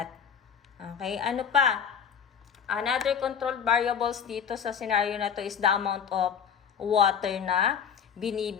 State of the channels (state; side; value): quieter; right; 7.4 dB